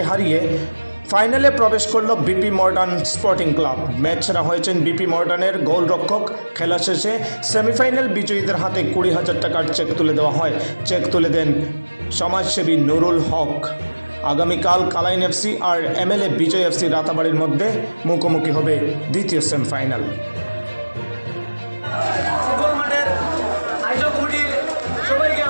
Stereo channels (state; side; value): inverted; both; correlation -1.00